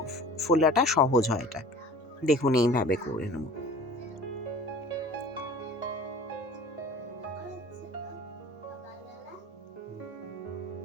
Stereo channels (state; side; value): normal; both; correlation 0.44